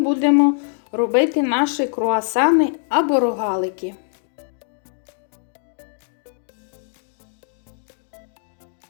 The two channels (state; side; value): silent; right; digital silence